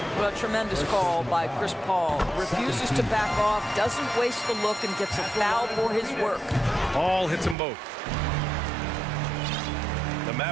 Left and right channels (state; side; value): drops out; left; at 7.6 s